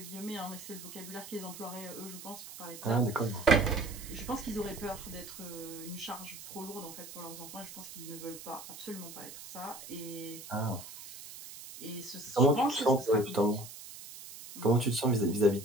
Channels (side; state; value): right; noise; hiss, 13 dB below the sound